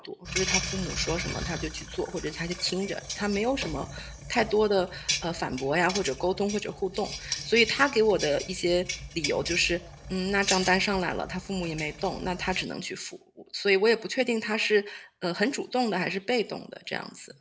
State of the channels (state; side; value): identical; both; correlation 1.00